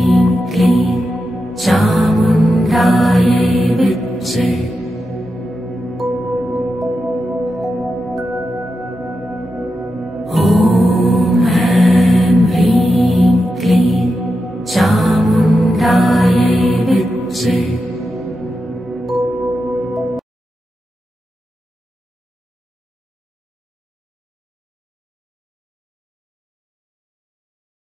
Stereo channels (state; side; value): normal; both; correlation 0.89